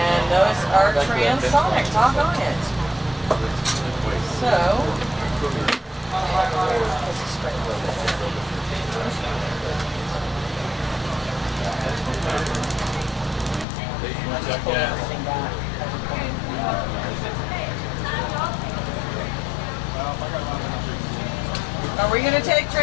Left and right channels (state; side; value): drops out; right; at 13.7 s